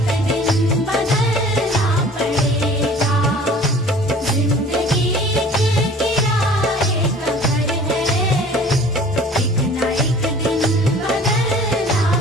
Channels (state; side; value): normal; both; correlation 0.47